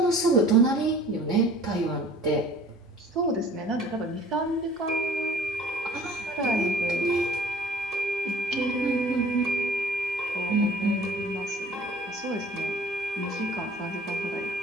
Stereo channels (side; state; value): both; normal; correlation 0.50